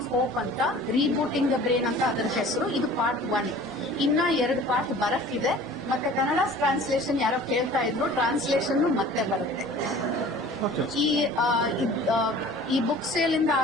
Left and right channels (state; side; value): normal; both; correlation 0.45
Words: ಹೋಪ್ ಅಂತ, ರೀಬೂಟಿಂಗ್ ದ ಬ್ರೈನ್ ಅಂತ ಅದರ ಹೆಸರು. ಇದು ಪಾರ್ಟ್ 1. ಇನ್ನ 2 ಪಾರ್ಟ್ ಬರಕ್ಕಿದೆ. ಮತ್ತೆ ಕನ್ನಡ ಟ್ರಾನ್ಸ್ಲೇಷನ್ ಯಾರೋ ಕೇಳ್ತಾ ಇದ್ರು, ಟ್ರಾನ್ಸ್ಲೇಷನ್ ಮತ್ತೆ ಬರುತ್ತೆ. ಈ ಬುಕ್ ಸೇಲ್ ಇಂದ